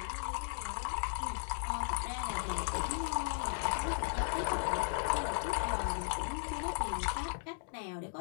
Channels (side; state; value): right; silent; digital silence